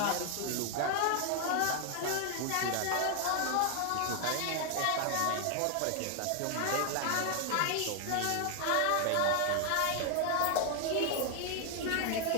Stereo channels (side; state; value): both; different; correlation 0.00